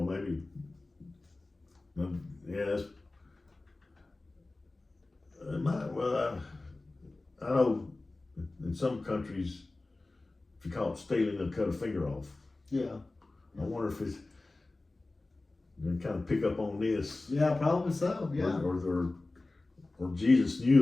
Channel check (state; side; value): quieter; right; 3.1 dB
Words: Maybe. Yeah. I know in some countries, if you call it stealing, they'll cut a finger off. Yeah. I wonder if it's. They kind of pick up on this. Yeah, probably so. Yeah. Or Jesus